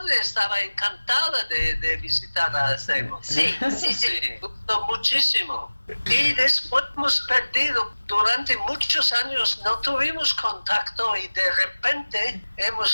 estaba encantada de visitar a Acebo. Sí. Gustó muchísimo. Y después hemos perdido, durante muchos años no tuvimos contacto y de repente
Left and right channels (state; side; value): inverted; both; correlation -1.00